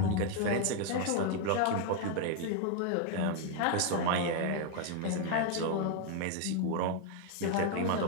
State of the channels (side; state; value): both; different; correlation 0.01